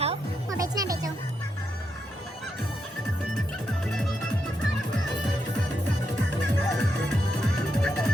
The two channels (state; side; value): normal; both; correlation 0.83